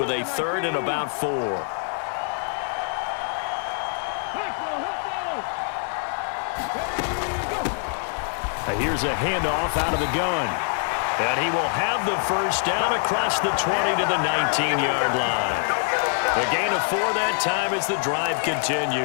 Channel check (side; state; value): right; silent; 62 dB below the other